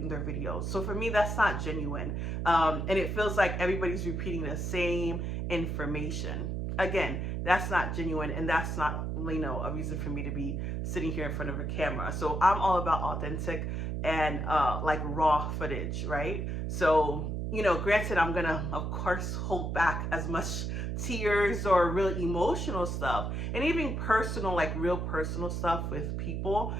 videos. So for me, that's not genuine. And it feels like everybody's repeating the same information. Again, that's not genuine, and that's not, a reason for me to be sitting here in front of a camera. So I'm all about authentic and like raw footage, right? So, granted, I'm gonna, of course, hold back as much tears or real emotional stuff, and even personal, like real personal stuff with people.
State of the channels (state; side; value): noise; right; hum, 2 dB below the sound